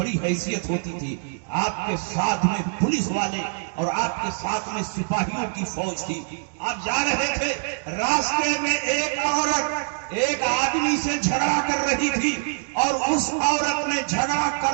حیثیت ہوتی تھی. آپ کے ساتھ میں پولیس والے اور آپ کے ساتھ میں سپاہیوں کی فوج تھی. آپ جا رہے تھے، راستے میں ایک عورت ایک آدمی سے جھگڑا کر رہی تھی اور اس عورت نے جھگڑا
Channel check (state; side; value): silent; left; digital silence